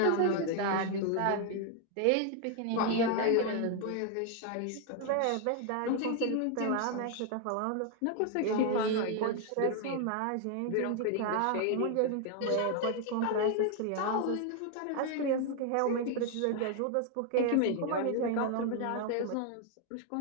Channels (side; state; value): both; different; correlation 0.00